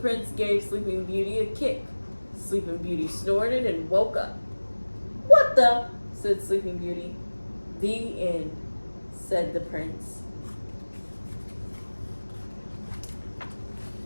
gave Sleeping Beauty a kick. Sleeping Beauty snorted and woke up. "What the?" said Sleeping Beauty. "The end," said the prince.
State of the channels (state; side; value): inverted; both; correlation -1.00